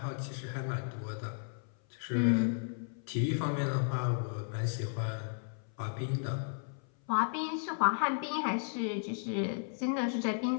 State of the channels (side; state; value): right; silent; 55 dB below the other